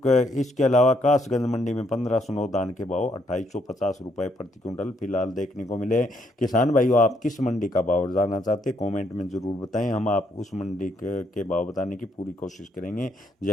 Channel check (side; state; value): both; normal; correlation 0.72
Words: इसके अलावा कासगंज मंडी में 1509 धान के भाव 2850 रुपये प्रति क्विंटल फिलहाल देखने को मिले। किसान भाइयों आप किस मंडी का भाव जानना चाहते हैं कमेंट में ज़रूर बताएं, हम आप उस मंडी के भाव बताने की पूरी कोशिश करेंगे।